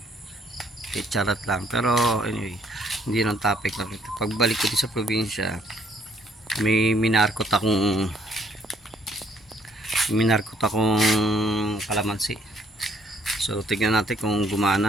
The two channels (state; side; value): normal; both; correlation 0.66